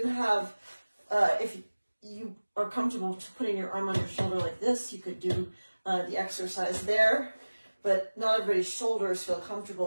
have, if you are comfortable putting your arm on your shoulder like this, you could do the exercise there. But not everybody's shoulders feel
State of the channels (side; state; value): both; inverted; correlation -1.00